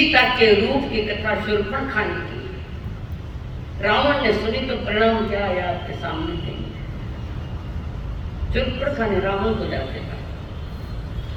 के रूप की कथा शूर्पणखा ने की, रावण ने सुनी तो परिणाम क्या आया आपके सामने थे। शूर्पणखा ने रावण को जाके कहा,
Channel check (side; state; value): both; identical; correlation 1.00